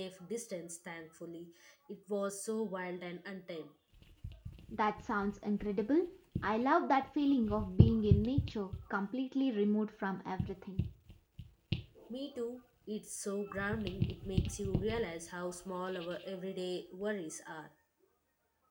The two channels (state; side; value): identical; both; correlation 1.00